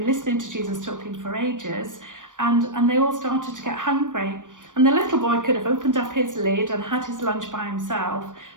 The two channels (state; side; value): late; left; 0.88 ms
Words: listening to Jesus talking for ages, and they all started to get hungry. And the little boy could have opened up his lid and had his lunch by himself,